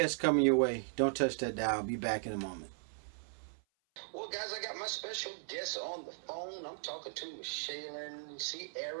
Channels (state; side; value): silent; left; 53 dB below the other